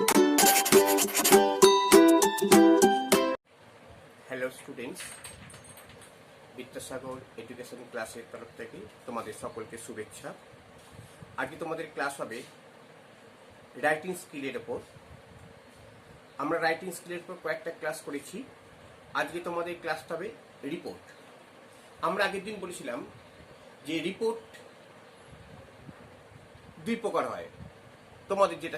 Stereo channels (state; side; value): identical; both; correlation 1.00